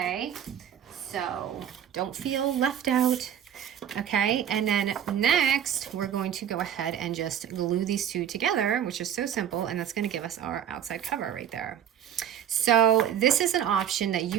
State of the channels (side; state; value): left; quieter; 9.6 dB